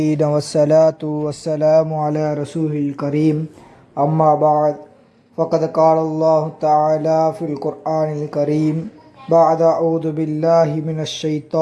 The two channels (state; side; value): identical; both; correlation 1.00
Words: வஸ்ஸலாத்து வஸ்ஸலாமு அலா ரசூலில் கரீம். அம்மா பஅத் ஃபகத் காலல்லாஹு தஆலா ஃபில் குர்ஆனில் கரீம் பஅத அஊது பில்லாஹி மினஷ்